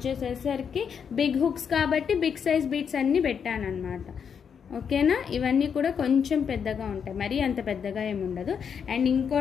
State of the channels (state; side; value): quieter; right; 7.1 dB